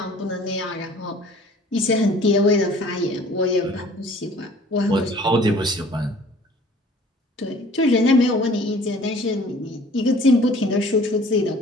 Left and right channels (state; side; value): normal; both; correlation 0.51